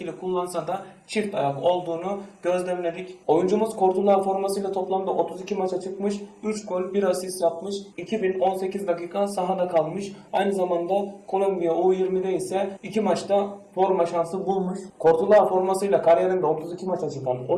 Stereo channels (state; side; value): identical; both; correlation 1.00